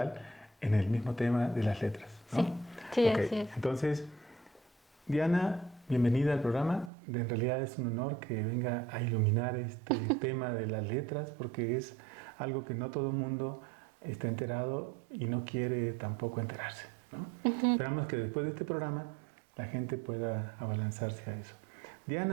en el mismo tema de las letras, ¿no? Sí, okay. Así es. Entonces, Diana, bienvenida al programa. En realidad es un honor que venga a iluminar este tema de las letras, porque es algo que no todo el mundo está enterado y no quiere tampoco enterarse, ¿no? Esperamos que después de este programa la gente pueda abalanzarse a eso.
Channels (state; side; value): drops out; left; at 6.9 s